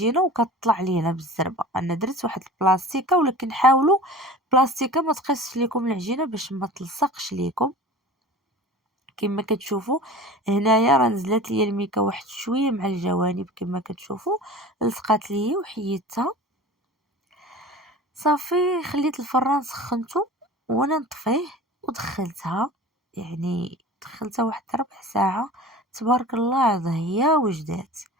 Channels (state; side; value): normal; both; correlation 0.38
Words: وكتطلع لينا بالزربه. انا درت واحد البلاستيكه، ولكن حاولوا بلاستيكه ما تقيسش ليكم العجينه باش ما تلصقش ليكم. كما كتشوفوا هنايا راه نزلت ليا الميكا واحد شويه مع الجوانب، كما كتشوفوا لصقات ليا وحيدتها. صافي خليت الفران سخنته وانا نطفيه ودخلتها، يعني دخلتها واحد ربع ساعه. تبارك الله ضهيه وجدات